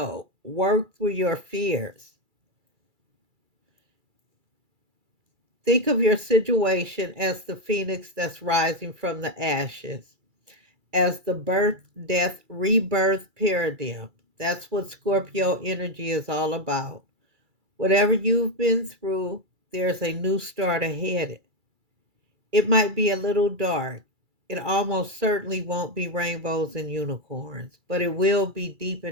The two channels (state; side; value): late; left; 2.3 ms